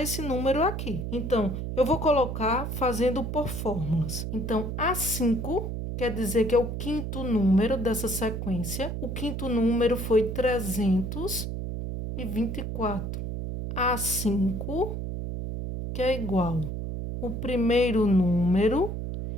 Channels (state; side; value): noise; right; hum, 4 dB below the sound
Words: esse número aqui. Então, eu vou colocar fazendo por fórmulas. Então, A5 quer dizer que é o 5º número dessa sequência. O 5º número foi 324. A5, que é igual o primeiro número